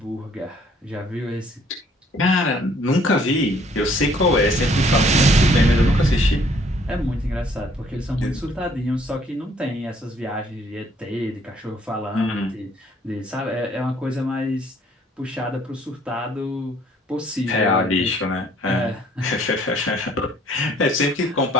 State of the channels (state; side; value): normal; both; correlation 0.61